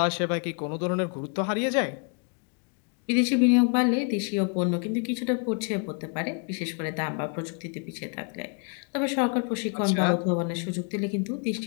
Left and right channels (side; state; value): right; quieter; 38.0 dB